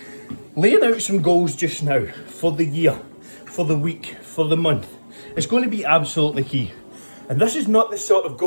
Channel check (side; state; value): both; inverted; correlation -1.00